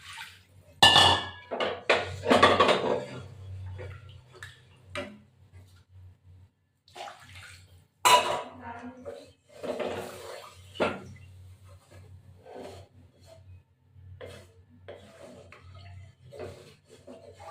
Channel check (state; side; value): identical; both; correlation 1.00